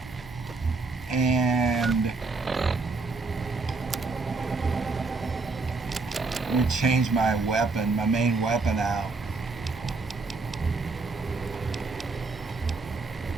And let me change my weapon, my main weapon out.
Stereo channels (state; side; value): quieter; left; 4.0 dB